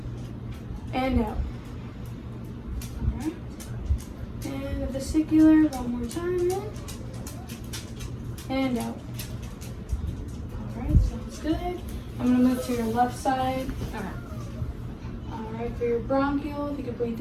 And out. Alright. And the vesicular, one more time, in. And out. Alright, sounds good. I'm gonna move to your left side. Okay. Alright, for your bronchial, if you could breathe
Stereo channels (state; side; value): identical; both; correlation 1.00